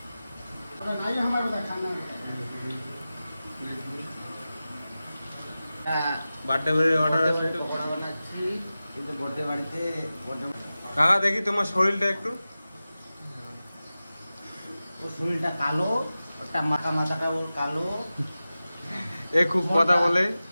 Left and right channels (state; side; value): inverted; both; correlation -0.95